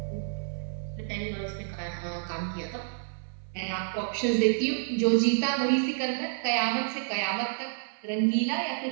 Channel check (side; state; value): left; silent; 58 dB below the other